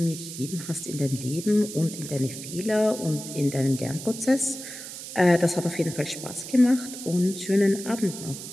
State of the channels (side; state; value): right; noise; hiss, 10 dB below the sound